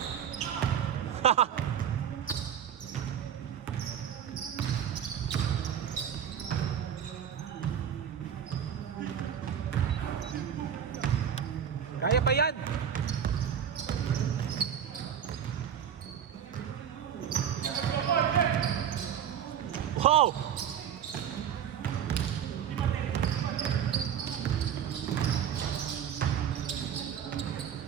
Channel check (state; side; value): quieter; left; 8.7 dB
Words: Kaya pa yan. Wow.